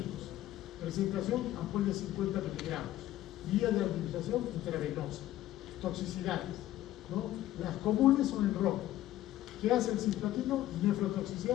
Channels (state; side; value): quieter; right; 14.0 dB